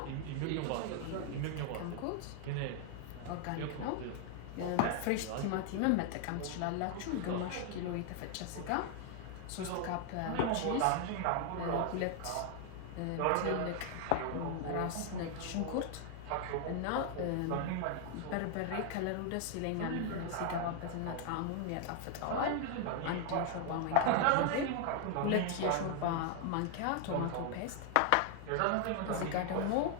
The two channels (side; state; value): both; different; correlation 0.00